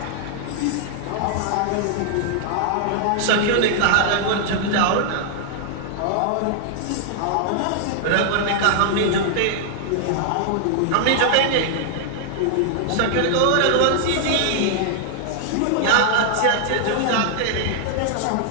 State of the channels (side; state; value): both; different; correlation -0.01